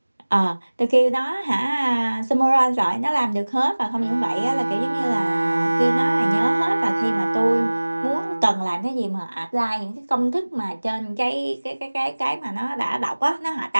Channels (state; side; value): inverted; both; correlation -1.00